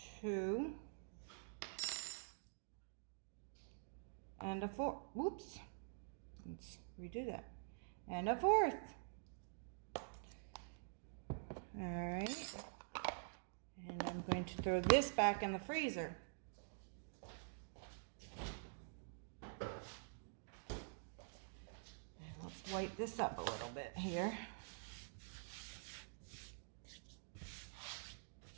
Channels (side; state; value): left; silent; digital silence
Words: 2, and a fourth. Whoops. Let's redo that. And a fourth. All right. And I'm going to throw this back in the freezer. Wipe this up a little bit here.